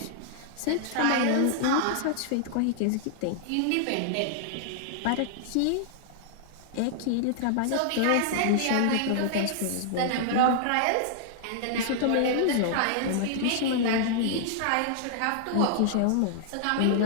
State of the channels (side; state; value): both; different; correlation -0.01